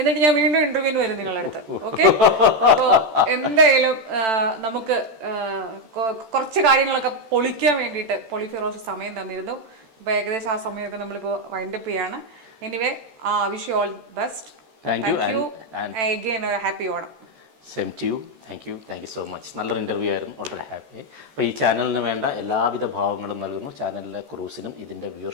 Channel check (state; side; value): late; left; 13 ms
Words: ഞാൻ വീണ്ടും ഇന്റർവ്യൂവിന് വരും നിങ്ങളുടെ അടുത്ത്. ഓക്കെ? അപ്പോൾ എന്തായാലും നമുക്ക് കുറച്ച് കാര്യങ്ങളൊക്കെ പൊളിക്കാൻ വേണ്ടിയിട്ട് പൊളിഫിറോസ് സമയം തന്നിരുന്നു. അപ്പോൾ ഏകദേശം ആ സമയമൊക്കെ നമ്മളിപ്പോൾ വൈൻഡപ്പ് ചെയ്യാണ്. Anyway, wish you all best. Thank you. Again ഒരു happy Onam. Same to you. Thank you so much. നല്ലൊരു ഇൻ്റർവ്യൂ ആയിരുന്നു. വളരെ ഹാപ്പി. അപ്പോൾ ഈ ചാനലിന് വേണ്ട എല്ലാവിധ ഭാവങ്ങളും നൽകുന്നു. ചാനലിലെ ക്രൂസിനും ഇതിൻ്റെ